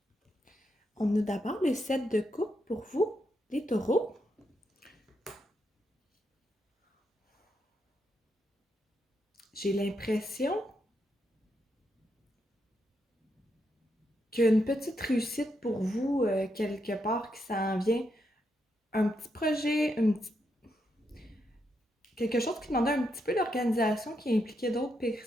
On a d'abord le set de coupe pour vous, les taureaux. J'ai l'impression qu'il y a une petite réussite pour vous quelque part qui s'en vient. Un petit projet, quelque chose qui demandait un petit peu d'organisation, qui impliquait d'autres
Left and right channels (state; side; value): normal; both; correlation 0.81